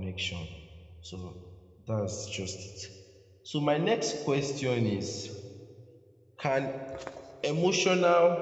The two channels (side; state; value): both; identical; correlation 1.00